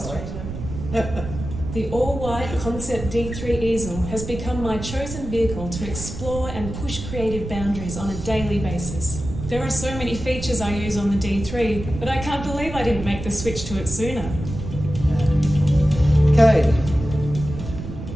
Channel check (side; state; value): right; noise; rumble, 8 dB below the sound